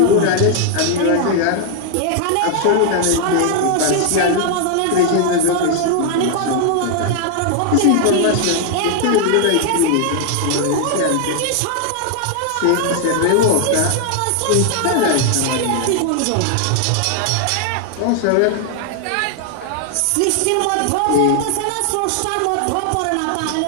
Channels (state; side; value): different; both; correlation 0.00